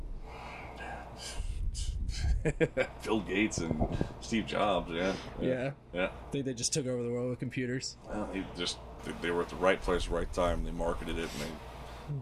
Bill Gates and Steve Jobs. Yeah. Think they just took over the world with computers. Well, they were at the right place, right time. They marketed it,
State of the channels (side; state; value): both; identical; correlation 1.00